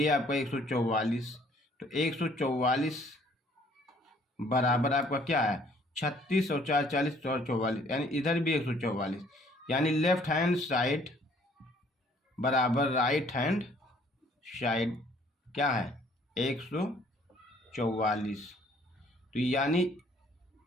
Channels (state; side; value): normal; both; correlation 0.60